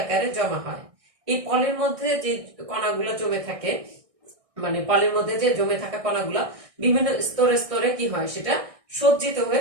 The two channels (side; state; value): left; late; 1.6 ms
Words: আকারে জমা হয়। এই পলির মধ্যে যে কণাগুলো জমে থাকে, মানে পলির মধ্যে যে জমে থাকা কণাগুলো বিভিন্ন স্তরে স্তরে কি হয়, সেটা সজ্জিত